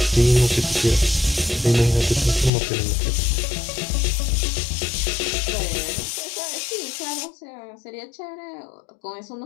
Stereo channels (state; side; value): drops out; right; at 2.5 s